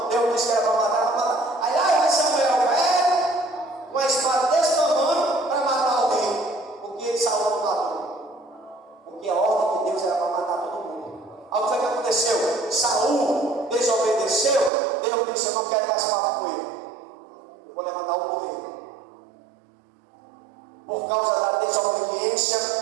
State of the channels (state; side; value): drops out; left; at 14.7 s